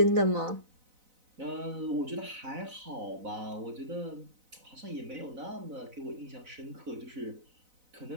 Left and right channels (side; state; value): left; late; 4.0 ms